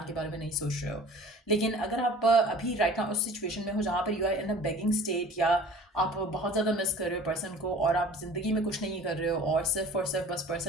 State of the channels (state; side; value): normal; both; correlation 0.44